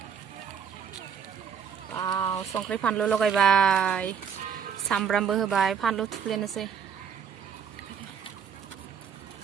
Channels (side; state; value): left; quieter; 7.4 dB